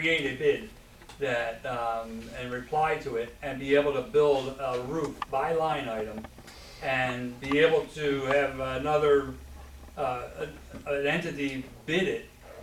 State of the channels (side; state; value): both; identical; correlation 1.00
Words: a bid that, and reply to it, and be able to build a roof by line item, and be able to have another, an entity bid it,